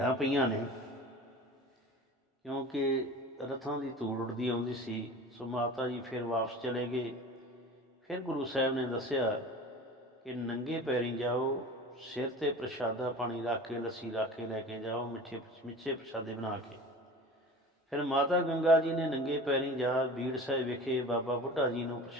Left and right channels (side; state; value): both; normal; correlation 0.37